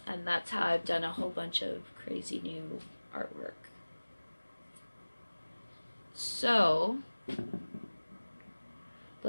that's how I've done a whole bunch of crazy new artwork. So,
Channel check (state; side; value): inverted; both; correlation -1.00